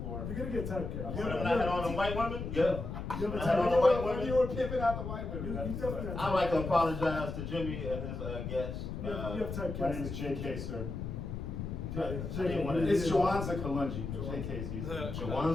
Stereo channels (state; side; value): noise; left; rumble, 5 dB below the sound